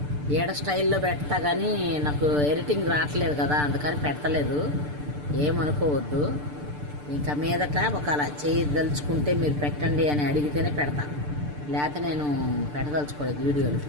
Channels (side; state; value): left; late; 6.8 ms